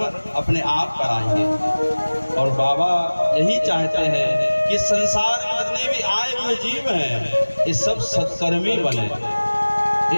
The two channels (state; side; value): inverted; both; correlation -1.00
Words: अपने आप कराएंगे। और बाबा यही चाहते हैं कि संसार में जितने भी आए हुए जीव हैं, ये सब सत्कर्मी बने,